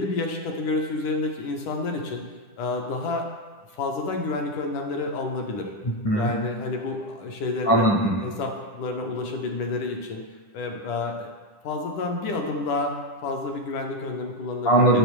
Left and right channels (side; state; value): right; late; 10 ms